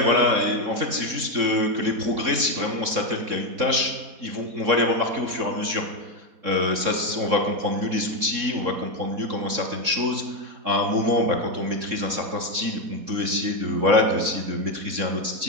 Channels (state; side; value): late; left; 3.6 ms